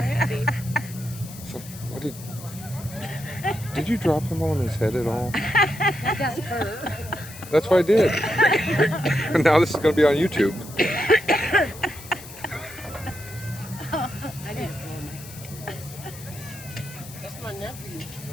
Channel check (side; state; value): left; noise; hiss, 16 dB below the sound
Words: So, what did you drop him on his head at all? That's her. That's what I did. And now this is going to be on YouTube. I didn't. That's my nephew.